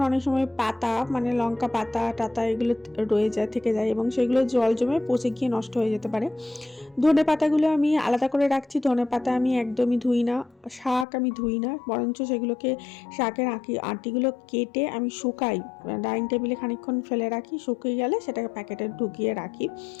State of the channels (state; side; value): drops out; right; at 11.1 s